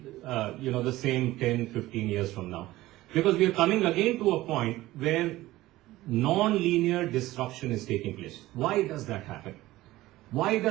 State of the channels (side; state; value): left; quieter; 17.1 dB